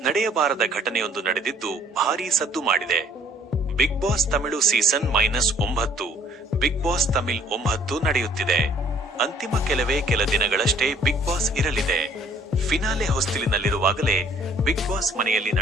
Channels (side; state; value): both; normal; correlation 0.58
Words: ನಡೆಯಬಾರದ ಘಟನೆಯೊಂದು ನಡೆದಿದ್ದು ಭಾರೀ ಸದ್ದು ಮಾಡಿದೆ. Bigg Boss Tamil season -9 Bigg Boss Tamil 9 ನಡೆಯುತ್ತಿದೆ. ಅಂತಿಮ ಕೆಲ ದಿನಗಳಷ್ಟೇ ಬಿಗ್ ಬಾಸ್ ಇರಲಿದೆ. ಫಿನಾಲೆ ಹೊಸ್ತಿಲಿನಲ್ಲಿರುವಾಗಲೇ ಬಿಗ್ ಬಾಸ್ ಮನೆಯಲ್ಲಿ